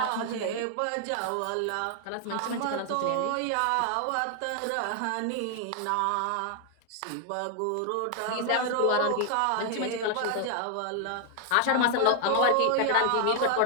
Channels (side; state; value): both; different; correlation 0.00